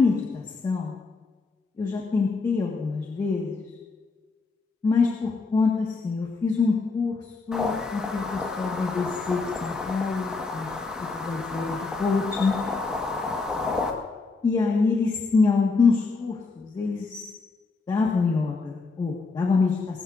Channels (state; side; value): quieter; right; 4.1 dB